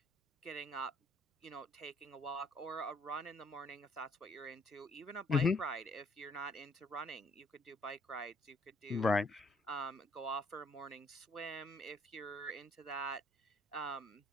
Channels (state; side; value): normal; both; correlation 0.65